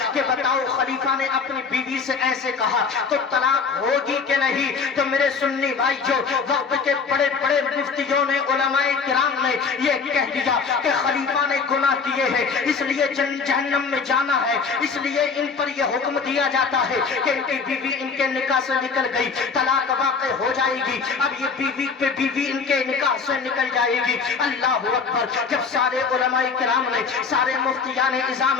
کہ بتاؤ خلیفہ نے اپنی بیوی سے ایسے کہا تو طلاق ہوگی کہ نہیں؟ تو میرے سنی بھائی جو وقت کے بڑے بڑے مفتیوں نے علماء کرام نے یہ کہہ دیا کہ خلیفہ نے گناہ کیے ہیں اس لیے جہنم میں جانا ہے، اس لیے ان پر یہ حکم دیا جاتا ہے کہ ان کی بیوی ان کے نکاح سے نکل گئی، طلاق واقع ہو جائے گی، اب یہ بیوی پہ بیوی ان کے نکاح سے نکل جائے گی۔ اللہ اکبر! جب سارے علماء کرام نے، سارے مفتیان اعظام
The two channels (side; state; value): right; quieter; 5.3 dB